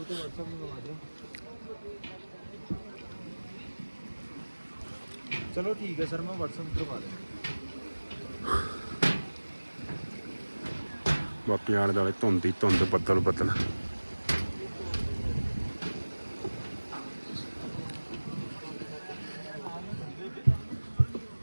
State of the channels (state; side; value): inverted; both; correlation -1.00